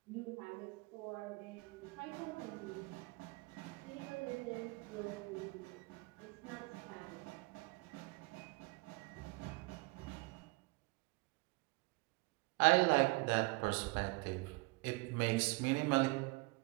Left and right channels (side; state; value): left; quieter; 25.8 dB